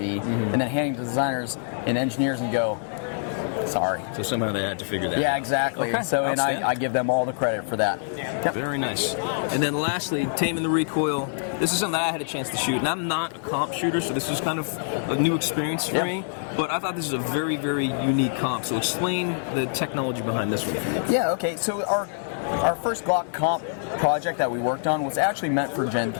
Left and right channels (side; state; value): right; silent; digital silence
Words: and then handing to designers and engineers and go, sorry. So somehow they had to figure that out. Yeah, exactly. Okay. So, and I give them all the credit for that. Yep. Very nice. And then lastly, taming the recoil. This is something that I had a chance to shoot, and I'm not a comp shooter, so this is kind of a new experience for me. But I thought this is a very, very unique comp. So explain the technology behind this one. Yeah. Okay. So our first Glock comp project that we worked on was actually meant for Gen